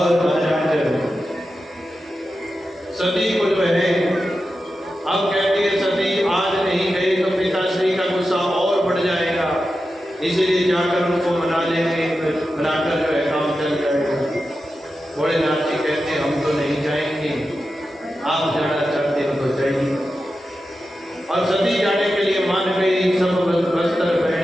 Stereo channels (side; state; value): both; normal; correlation 0.91